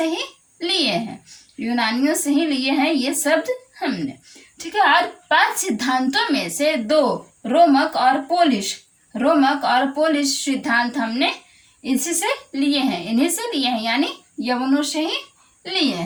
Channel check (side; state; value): both; identical; correlation 1.00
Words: ही लिए हैं ये शब्द हमने। ठीक है। और 5 सिद्धांतों में से 2 रोमक और पोलिश सिद्धांत हमने इन्हीं से लिए हैं, यानी यवनों से ही लिए